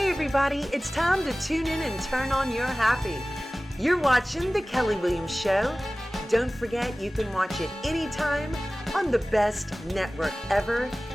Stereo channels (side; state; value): both; normal; correlation 0.97